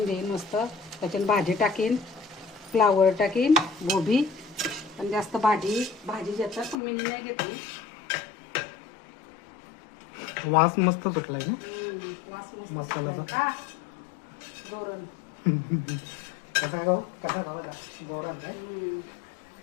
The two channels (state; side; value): drops out; right; at 6.8 s